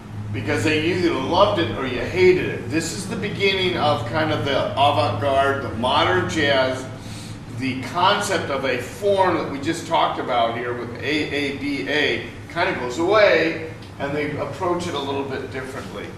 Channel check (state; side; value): identical; both; correlation 1.00